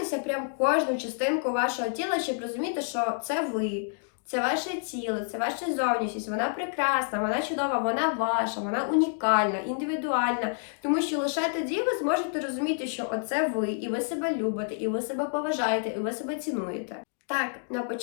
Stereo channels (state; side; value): silent; right; digital silence